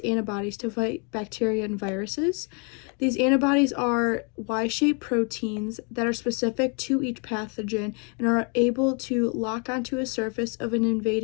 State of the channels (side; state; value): right; quieter; 35.6 dB